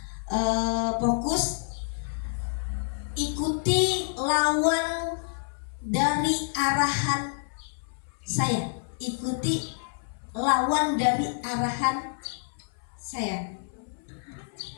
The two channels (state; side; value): silent; right; 59 dB below the other